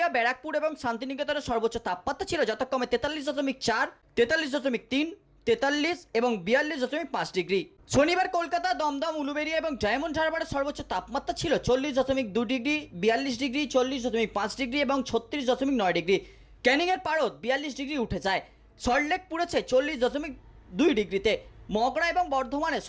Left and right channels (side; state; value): both; identical; correlation 1.00